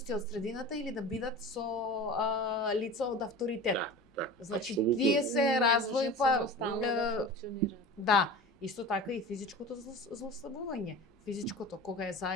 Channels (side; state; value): both; normal; correlation 0.35